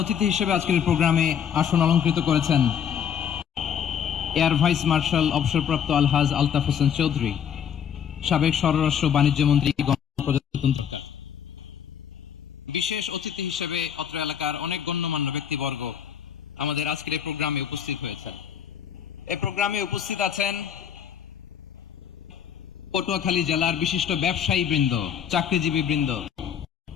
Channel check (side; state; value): right; quieter; 8.4 dB